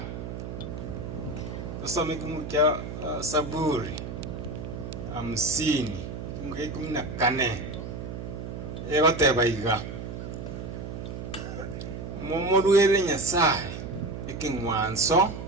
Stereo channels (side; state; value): right; noise; hum, 7 dB below the sound